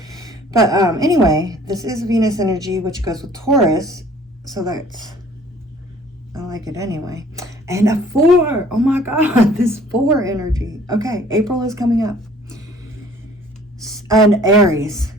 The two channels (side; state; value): both; normal; correlation 0.54